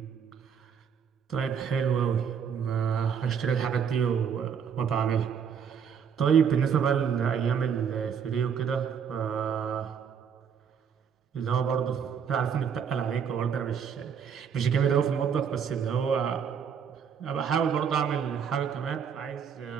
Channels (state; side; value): quieter; left; 7.3 dB